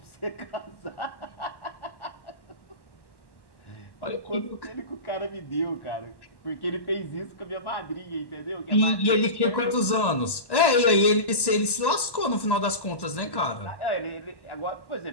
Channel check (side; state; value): right; late; 1.1 ms